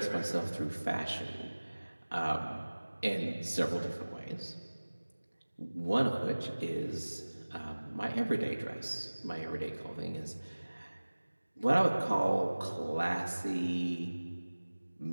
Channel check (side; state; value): both; inverted; correlation -1.00